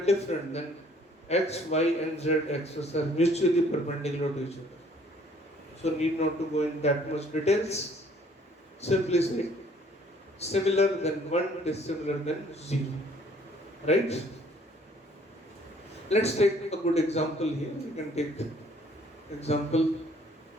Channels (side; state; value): both; normal; correlation 0.59